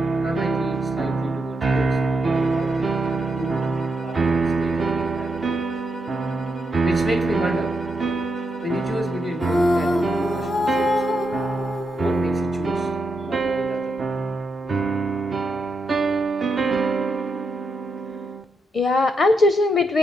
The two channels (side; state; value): both; normal; correlation 0.83